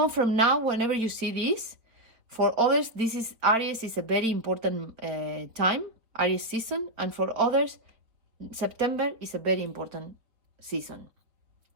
from now, whenever you see this, for others, this is Aries is a very important time, Aries season, and for others, September is a very important season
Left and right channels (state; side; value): late; left; 4.5 ms